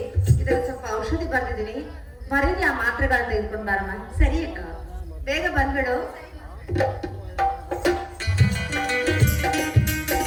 ಇದರ ಸ್ವಲ್ಪ ಔಷಧಿ ಬರ್ತಿದ್ದೀನಿ ಬರೀನಿ ಆ ಮಾತ್ರೆಗಳನ್ನ ತೆಗೆದುಕೊಂಡು ಬಾರಮ್ಮ ಸರಿ ಅಕ್ಕ ಬೇಗ ಬಂದ್ಬಿಡು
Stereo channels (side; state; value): both; identical; correlation 1.00